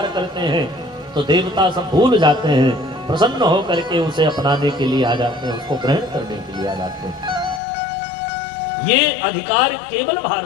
करते हैं, तो देवता सब भूल जाते हैं, प्रसन्न होकर के उसे अपनाने के लिए आ जाते हैं, उसको ग्रहण करने के लिए आ जाते हैं। ये अधिकार केवल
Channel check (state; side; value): drops out; right; at 7.6 s